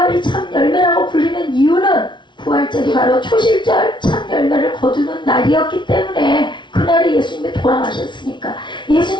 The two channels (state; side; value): late; right; 0.23 ms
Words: 참 열매라고 불리는 이유는 부활절이 바로 초실절 참 열매를 거두는 날이었기 때문에 그날에 예수님이 돌아가셨으니까